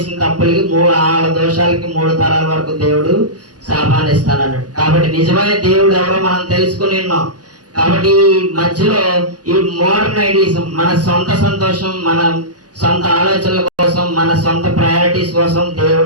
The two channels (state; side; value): late; left; 0.69 ms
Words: తప్పులకి, వాళ్ళ దోషాలకి 3 తరాల వరకు దేవుడు శాపాన్ని ఇస్తానన్నాడు. కాబట్టి నిజమైన దేవుడు ఎవరో మనం తెలుసుకుని ఉన్నాం. కాబట్టి ఈ మధ్యలో ఈ మోడర్న్ ఐడియాలిజం, మన సొంత సంతోషం, మన సొంత ఆలోచనల కోసం, మన సొంత ప్రయారిటీస్ కోసం